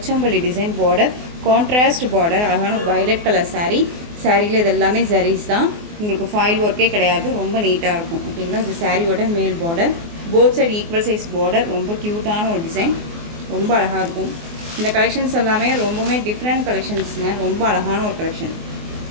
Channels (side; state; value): left; late; 24 ms